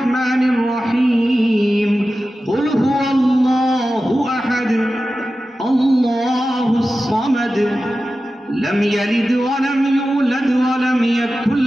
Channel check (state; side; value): normal; both; correlation 0.94